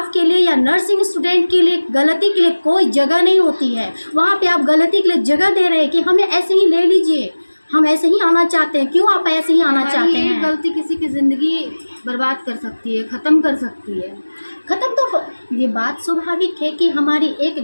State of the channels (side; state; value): both; inverted; correlation -1.00